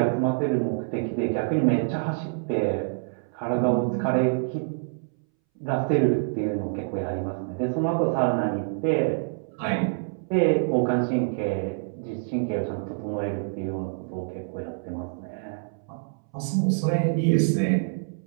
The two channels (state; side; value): silent; left; 61 dB below the other